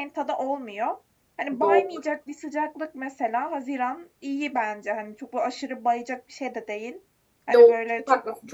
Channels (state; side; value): identical; both; correlation 1.00